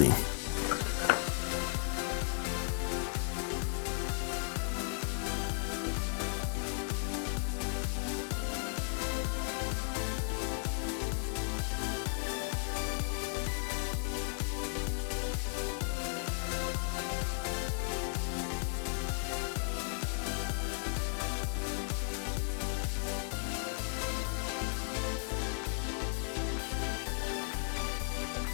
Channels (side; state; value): right; silent; 54 dB below the other